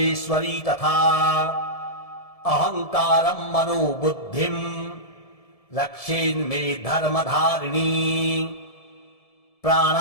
तथा अहङ्कारं मनोबुद्धिं रक्षेन्मे धर्मधारिणी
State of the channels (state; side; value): late; right; 1.7 ms